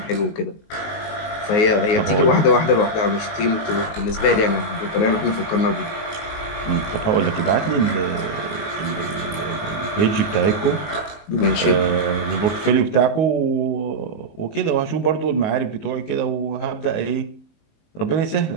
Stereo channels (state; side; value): late; right; 19 ms